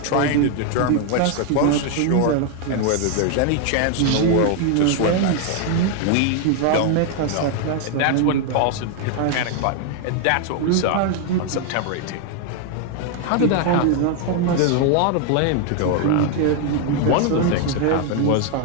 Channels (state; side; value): different; both; correlation 0.01